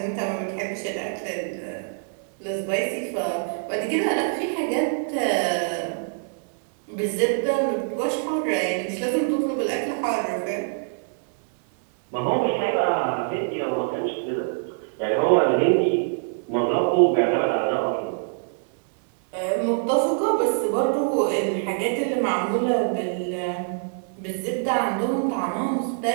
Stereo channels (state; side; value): silent; left; digital silence